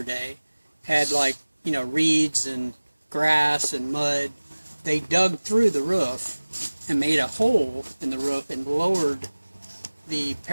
had reeds and grass and mud. They dug through the roof and made a hole in the roof and lowered the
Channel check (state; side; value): inverted; both; correlation -1.00